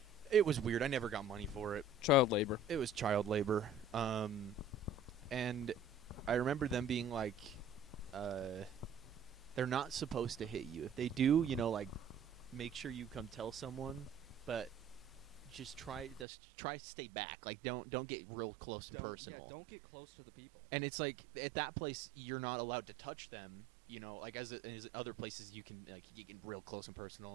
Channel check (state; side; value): drops out; left; at 16.2 s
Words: it was weird. I never got money for it. Child labor. It was child labor. And I remember them being like, they're not supposed to hit you. If they do, make sure you come tell someone, but just try to stay back. Like, don't get real close to personal. Don't get close to the people. And it's like, at that place, you're not allowed to touch them. As other places, you can get real close and